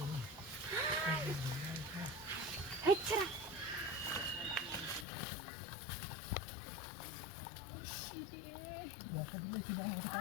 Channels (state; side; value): drops out; right; at 5.1 s